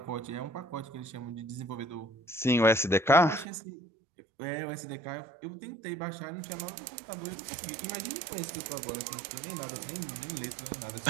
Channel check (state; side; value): drops out; left; at 3.5 s